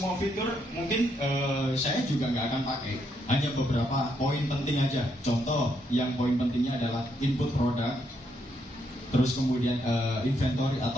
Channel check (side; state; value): both; normal; correlation 0.76